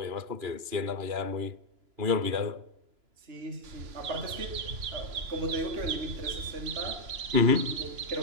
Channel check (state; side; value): late; left; 3.0 ms